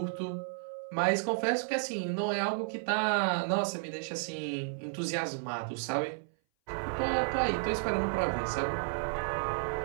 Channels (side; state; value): left; silent; 56 dB below the other